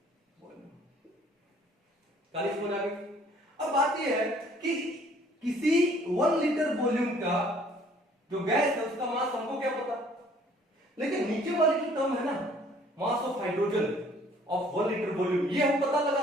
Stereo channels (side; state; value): both; normal; correlation 0.57